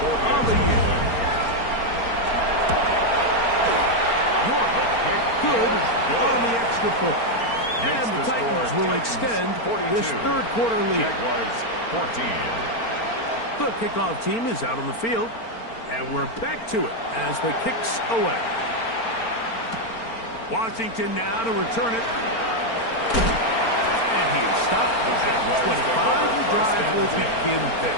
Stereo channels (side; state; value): right; late; 4.4 ms